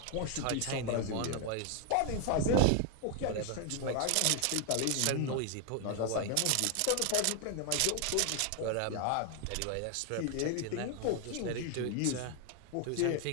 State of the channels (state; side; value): different; both; correlation 0.00